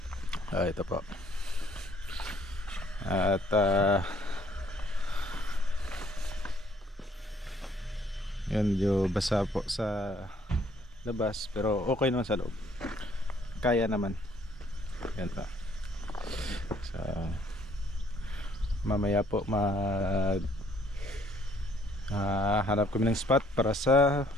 Ito po. At yun, medyo basa po sa labas, pero okay naman sa loob, kaya naman. Yan pa. So, mamaya po hanap kami ng spot para sa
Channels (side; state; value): both; normal; correlation 0.63